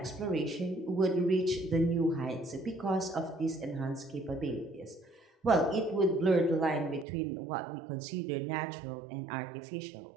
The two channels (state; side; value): drops out; left; at 7.1 s